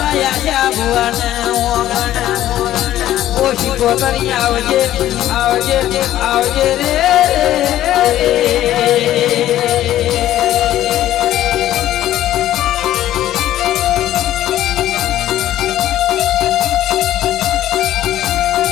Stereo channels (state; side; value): quieter; right; 13.1 dB